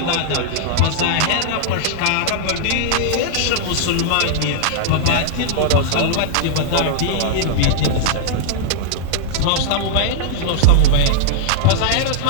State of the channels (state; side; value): different; both; correlation -0.01